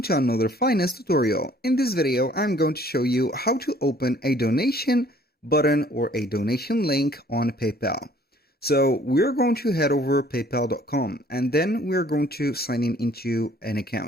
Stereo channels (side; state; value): both; normal; correlation 0.57